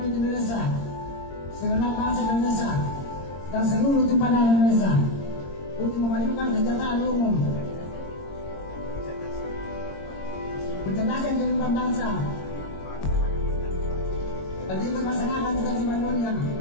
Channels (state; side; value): late; right; 22 ms